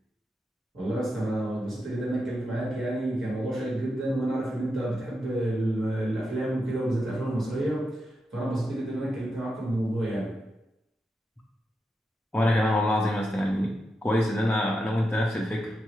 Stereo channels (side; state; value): both; normal; correlation 0.87